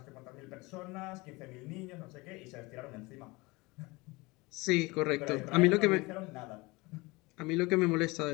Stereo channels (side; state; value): right; quieter; 23.9 dB